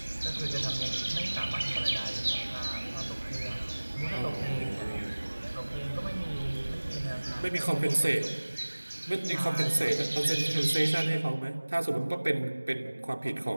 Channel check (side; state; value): both; inverted; correlation -1.00